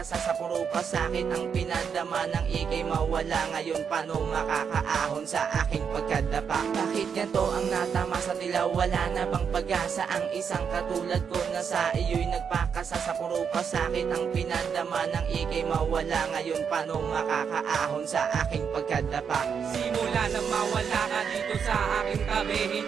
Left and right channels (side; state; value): left; quieter; 6.9 dB